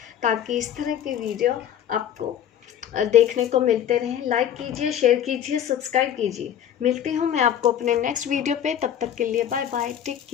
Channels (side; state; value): right; quieter; 9.9 dB